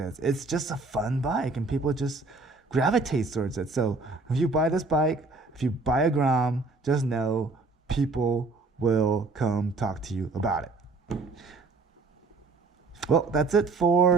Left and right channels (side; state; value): left; quieter; 3.7 dB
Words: It's just a fun bike and people just gravitate towards it. So if you buy this bike, if you buy a Grom, just know people will come talk to you about it. Well, that's it